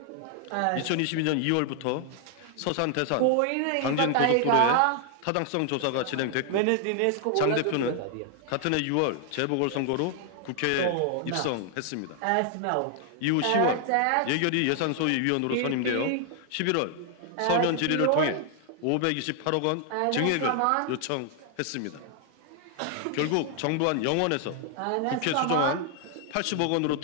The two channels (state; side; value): different; both; correlation 0.00